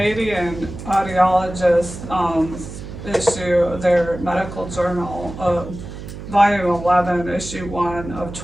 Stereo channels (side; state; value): right; noise; hum, 11 dB below the sound